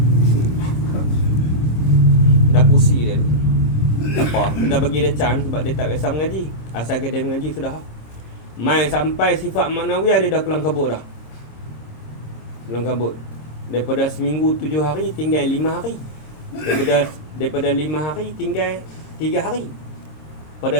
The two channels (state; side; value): late; right; 26 ms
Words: Dah pusi dia tu. Tak apa, kita bagi dia chance sebab dia tak biasa mengaji. Asalkan dia mengaji sudah. Mai sampai sifat maknawiyah dia dah kelang kabut dah. Kelang kabut. Daripada seminggu 7 hari tinggal 5 hari. Daripada 5 hari tinggal 3 hari. Pada